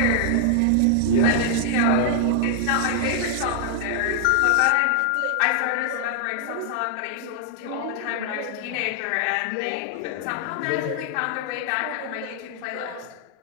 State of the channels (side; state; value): both; different; correlation -0.01